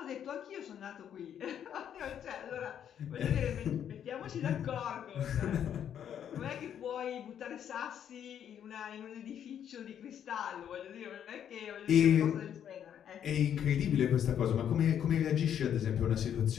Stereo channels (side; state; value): right; quieter; 9.3 dB